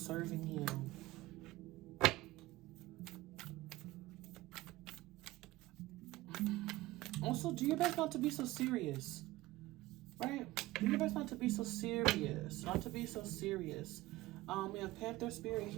you. Also, do your best not to be so serious, right? Do your best not to be so serious, We have Panther spirit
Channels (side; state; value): left; quieter; 18.2 dB